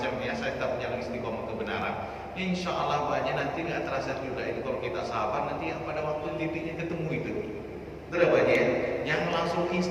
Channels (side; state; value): both; identical; correlation 1.00